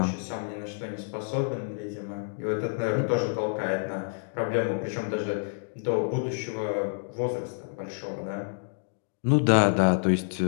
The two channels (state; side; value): silent; right; digital silence